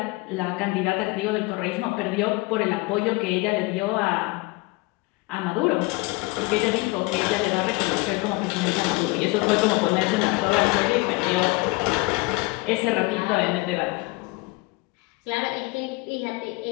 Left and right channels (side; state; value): right; quieter; 24.3 dB